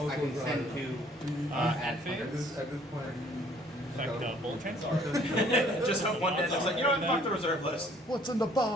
can send to at this point. bullet transfer. Just hope one day it's like, you know what, fuck the reserve list. What's in the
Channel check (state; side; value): normal; both; correlation 0.59